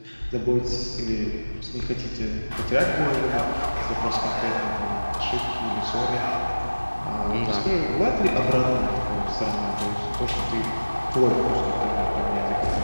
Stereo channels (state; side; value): inverted; both; correlation -1.00